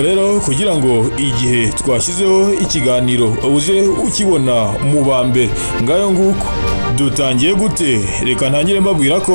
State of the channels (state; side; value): inverted; both; correlation -1.00